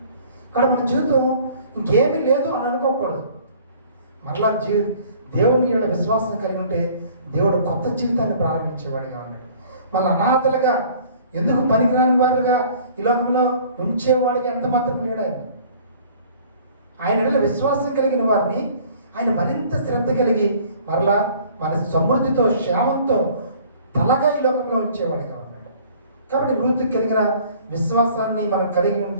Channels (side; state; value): both; inverted; correlation -0.52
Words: కానీ మన జీవితం ఇంకేమీ లేదు అని అనుకోకూడదు. మరలా దేవుని యొక్క విశ్వాసం కలిగి ఉంటే దేవుడు కొత్త జీవితాన్ని ప్రారంభించేవాడిగా ఉన్నాడు. మళ్ళీ అనాథలుగా, ఎందుకు పనికిరాని వారుగా ఈ లోకంలో ఉంచేవాడిగా ఎంత మాత్రం లేడు. ఆయన విశ్వాసం కలిగిన వారిని ఆయన మరింత శ్రద్ధ కలిగి మరలా మన సమృద్ధితో, క్షేమంతో తలగా ఈ లోకంలో ఉంచేవాడిగా ఉన్నాడు. కాబట్టి రూతుకి కలిగిన విశ్వాసాన్ని మనం కలిగి